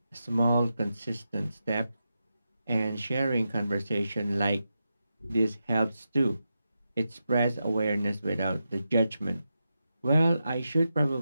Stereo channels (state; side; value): inverted; both; correlation -0.88